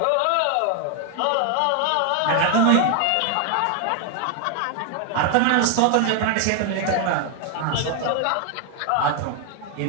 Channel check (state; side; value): different; both; correlation 0.01